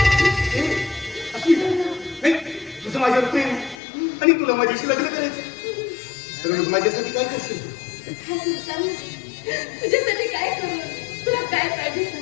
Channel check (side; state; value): right; drops out; at 3.8 s